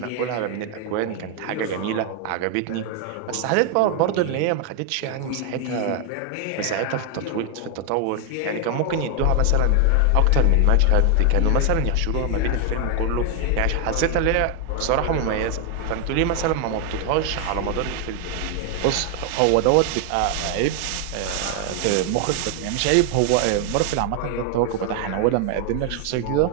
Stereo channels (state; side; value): different; both; correlation 0.01